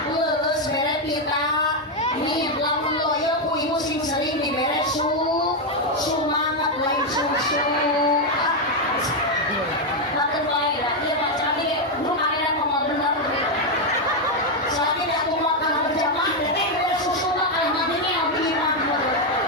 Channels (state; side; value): normal; both; correlation 0.03